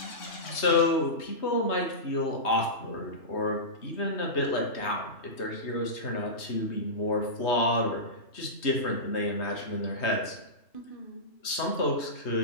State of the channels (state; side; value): late; right; 3.2 ms